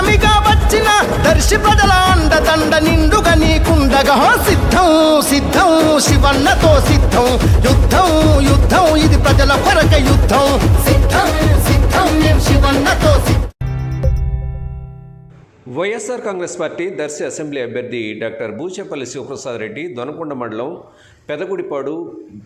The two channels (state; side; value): identical; both; correlation 1.00